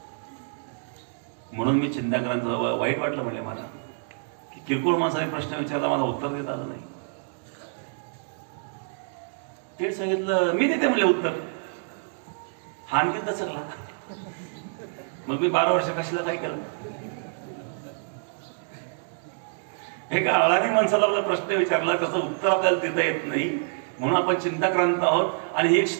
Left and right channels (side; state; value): left; silent; digital silence